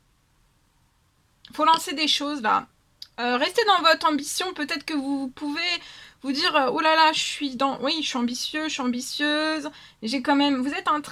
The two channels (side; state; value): both; identical; correlation 1.00